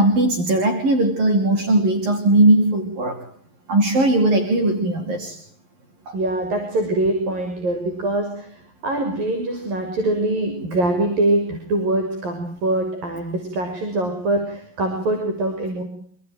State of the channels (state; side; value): late; left; 11 ms